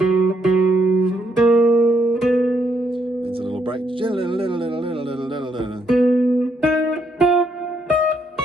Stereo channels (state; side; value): normal; both; correlation 0.75